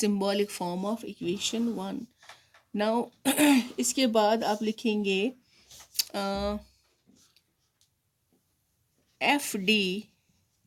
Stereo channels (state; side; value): identical; both; correlation 1.00